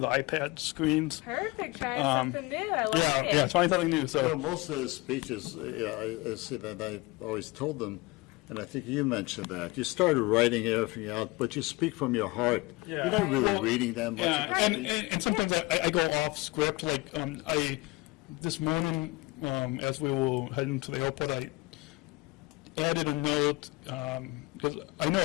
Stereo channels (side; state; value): right; quieter; 23.3 dB